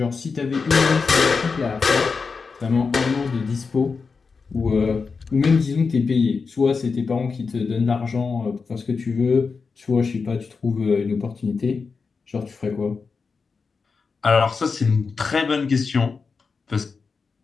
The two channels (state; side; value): quieter; right; 4.9 dB